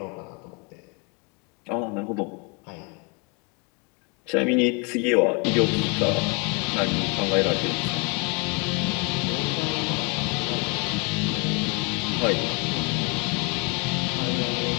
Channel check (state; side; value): quieter; right; 32.0 dB